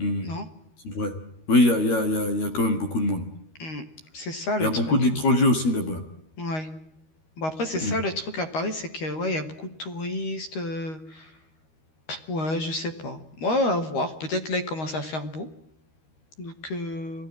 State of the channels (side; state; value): right; late; 13 ms